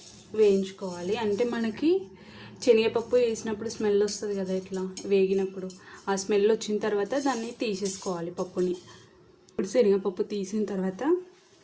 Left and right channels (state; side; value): identical; both; correlation 1.00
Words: వేయించుకోవాలి. అంటే మనకి శనగపప్పు వేసినప్పుడు స్మెల్ వస్తుంది కదా, ఇట్లా వేగినప్పుడు ఆ స్మెల్ వచ్చిన తర్వాత దాన్ని తీసేసుకోవాలి పప్పుని. ఇప్పుడు శనగపప్పు తీసిన తర్వాత